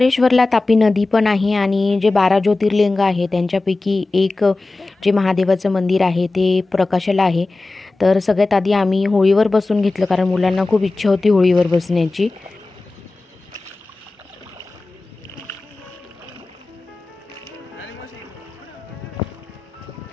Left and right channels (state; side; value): quieter; right; 3.3 dB